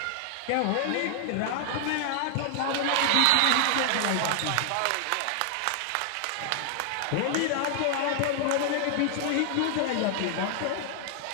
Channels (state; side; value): different; both; correlation 0.00